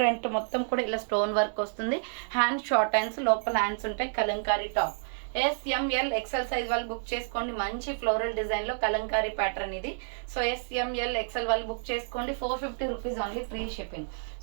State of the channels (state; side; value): silent; left; digital silence